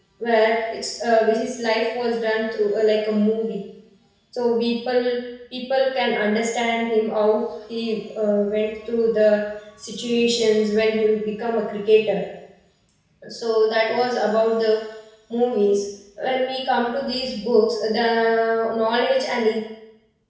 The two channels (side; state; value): both; identical; correlation 1.00